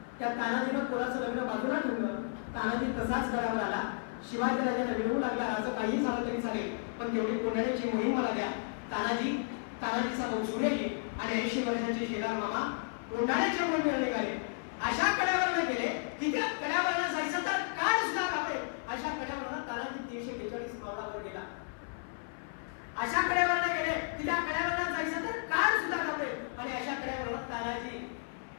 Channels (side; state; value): right; silent; 56 dB below the other